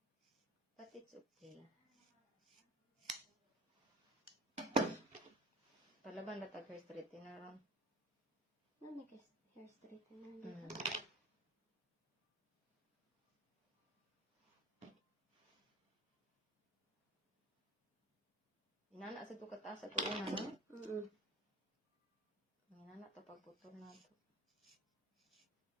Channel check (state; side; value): normal; both; correlation 0.45